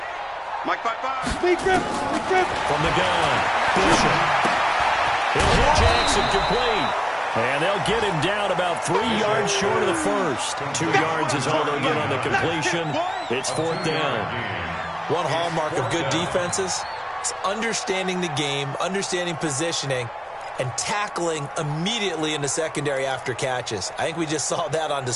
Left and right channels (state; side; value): identical; both; correlation 1.00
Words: Mike 5-5. Big grip. From the gun, Bishop. He'll hit Jackson complete. And they'll get him down about 3 yards short of the first. 2 yards is all they'll get on the completion. It's 4th down. One hallmark of good defenses is understanding the game, understanding positioning, and tackling immediately in the secondary after catches. I think we just saw that on